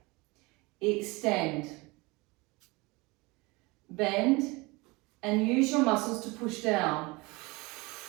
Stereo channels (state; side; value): quieter; left; 24.6 dB